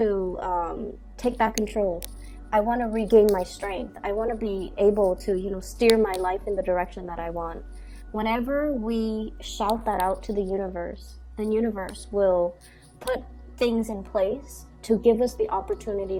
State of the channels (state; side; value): identical; both; correlation 1.00